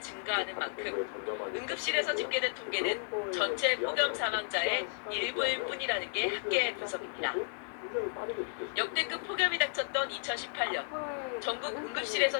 증가하는 만큼 응급실에서 집계된 통계는 전체 폭염 사망자의 일부일 뿐이라는 게 학계의 분석입니다. 역대급 폭염이 닥쳤던 2018년 전국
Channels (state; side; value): silent; right; digital silence